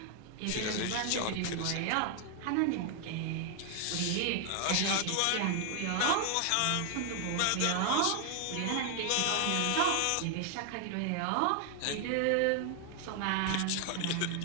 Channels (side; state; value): both; different; correlation 0.00